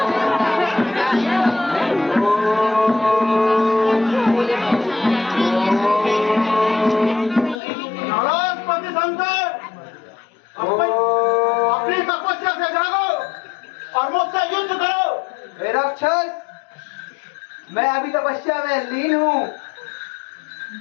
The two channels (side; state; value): right; drops out; at 7.6 s